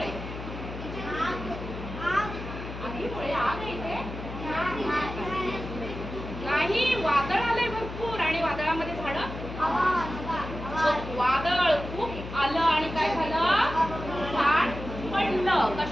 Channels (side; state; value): left; noise; hum, 9 dB below the sound